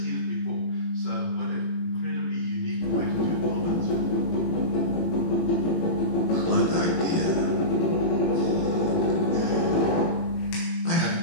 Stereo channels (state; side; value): late; right; 18 ms